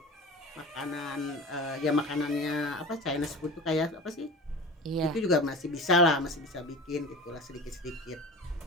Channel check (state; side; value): normal; both; correlation 0.34